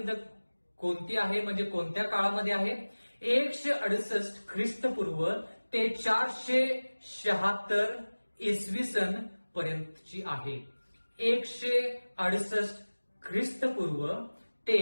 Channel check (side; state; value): both; inverted; correlation -1.00